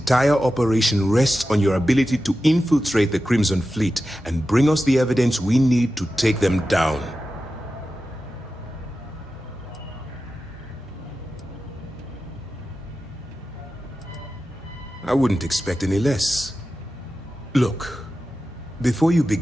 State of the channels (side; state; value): both; normal; correlation 0.93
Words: operation rests on your ability to infiltrate the Crimson Fleet and bring us the evidence we need to take them down. I wouldn't expect any less. Look, before you